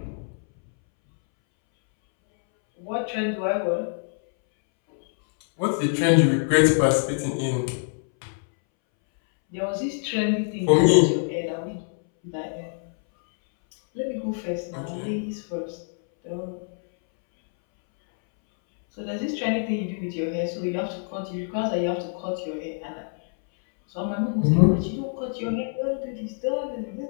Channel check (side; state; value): right; silent; 62 dB below the other